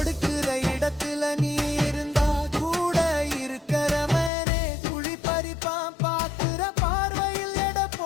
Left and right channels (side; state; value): right; drops out; at 4.3 s